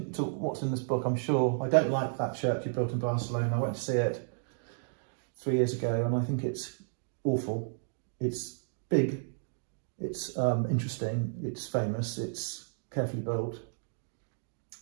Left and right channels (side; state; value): left; silent; digital silence